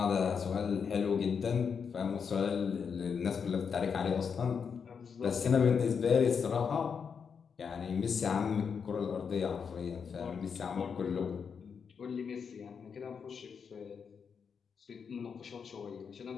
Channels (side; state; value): right; quieter; 6.4 dB